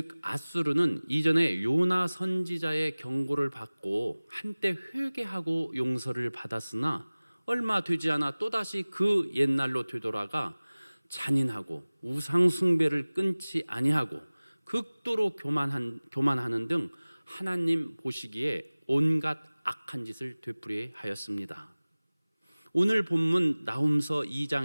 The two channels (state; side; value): inverted; both; correlation -1.00